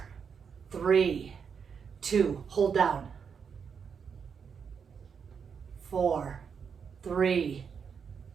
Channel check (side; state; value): left; quieter; 6.5 dB